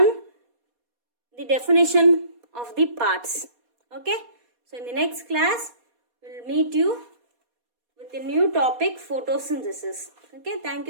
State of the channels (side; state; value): left; late; 4.2 ms